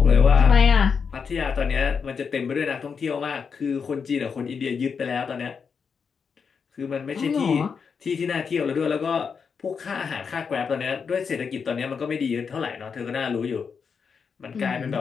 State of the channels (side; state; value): right; quieter; 6.0 dB